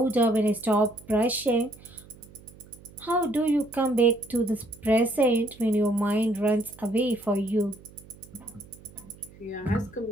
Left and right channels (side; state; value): right; noise; hum, 22 dB below the sound